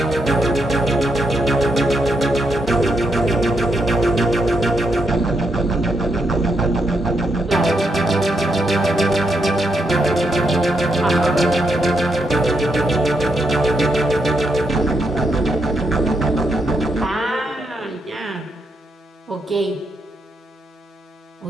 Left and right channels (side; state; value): both; normal; correlation 0.80